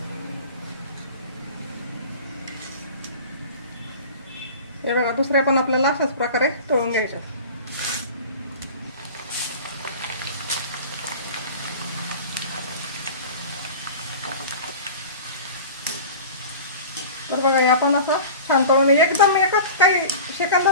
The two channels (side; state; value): both; inverted; correlation -0.37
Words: हे बघा दुसऱ्या पण आपल्याला अशाच प्रकारे तळून घ्यायचं. तर बघा हे आपण असं छान तळून एकदम एकच काही